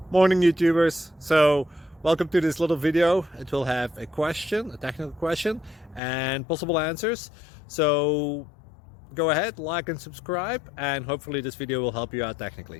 Morning YouTubers. So welcome to this little video. It will have a question, a technical question, and possible answers. So go ahead, like and subscribe, and hopefully this video will help you out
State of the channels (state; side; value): drops out; right; at 6.0 s